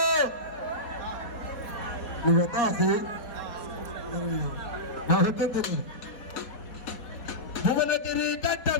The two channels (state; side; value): late; right; 4.2 ms